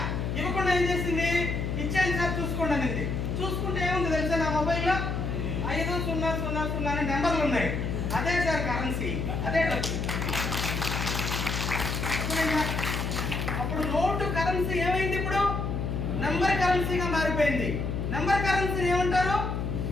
ఇవ్వకుండా ఏం చేసింది? ఇచ్చాను సార్ చూసుకోండి అనేది. చూసుకుంటే ఏముంది తెలుసా? నా మొబైల్లో 5000 అనే నెంబర్లు ఉన్నాయి. అదే సార్ కరెన్సీ, అదే డబ్బు. అప్పుడు నోటు కరెన్సీ ఏమైంది? ఇప్పుడు నెంబర్ కరెన్సీగా మారిపోయింది. నెంబర్ కరెన్సీ ఏమంటారు?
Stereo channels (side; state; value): left; noise; hum, 2 dB below the sound